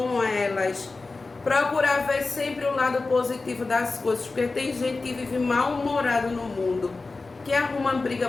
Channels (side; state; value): right; quieter; 3.7 dB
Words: elas, procurar ver sempre o lado positivo das coisas, porque tem gente que vive mal-humorado no mundo, que arruma briga